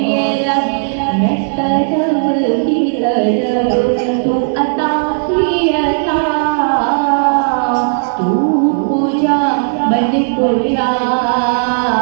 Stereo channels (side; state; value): left; silent; digital silence